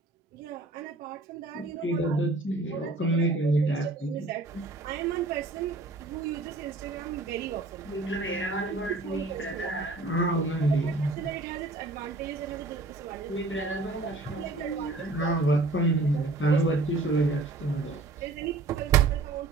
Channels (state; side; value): quieter; left; 3.3 dB